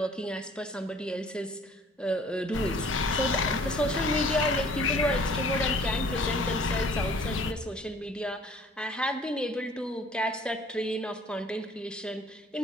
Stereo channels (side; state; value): both; normal; correlation 0.53